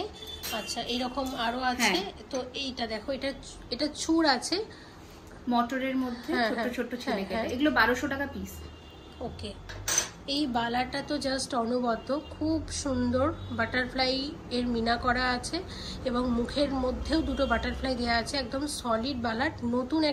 আচ্ছা, এইরকম আরো আছে। তো এইটা দেখো, এটা চূড় আছে মটরের মধ্যে, ছোট ছোট ছেলে কেটে, এগুলো 1200 টাকা পিস। ওকে। এই বালাটা তো জাস্ট অনবদ্য, খুব সুন্দর। বাটারফ্লাই এর মিনা করা আছে এবং মুখের মধ্যেও দুটো বাটারফ্লাই দেওয়া আছে, একদম সলিড বালা। নতুন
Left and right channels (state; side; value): identical; both; correlation 1.00